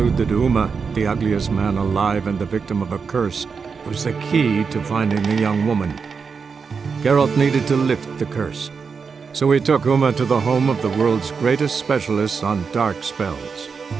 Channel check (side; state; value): left; quieter; 5.5 dB